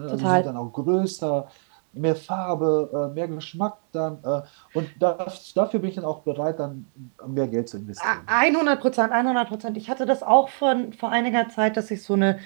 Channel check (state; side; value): silent; left; 59 dB below the other